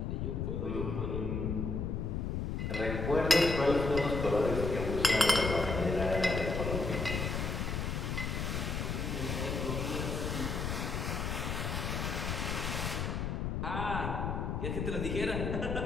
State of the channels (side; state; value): left; noise; rumble, 1 dB below the sound